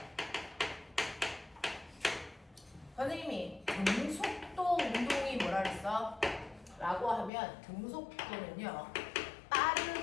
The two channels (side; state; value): right; drops out; at 7.3 s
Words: 선생님이 등속도 운동이 뭐라 그랬어? 라고 하면 등속도는요.